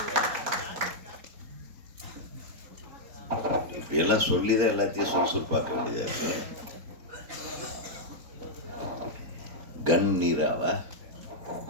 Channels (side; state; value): left; late; 4.4 ms